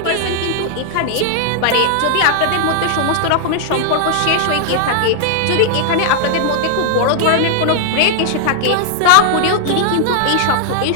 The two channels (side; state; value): both; different; correlation 0.00